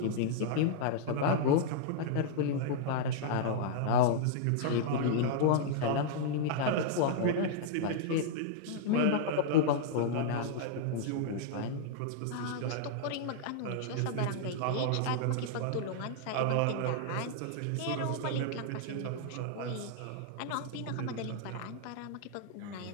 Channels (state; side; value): different; both; correlation -0.01